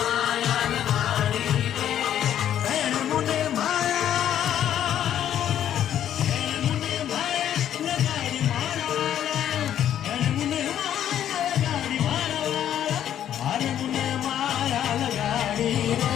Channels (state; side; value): quieter; right; 10.6 dB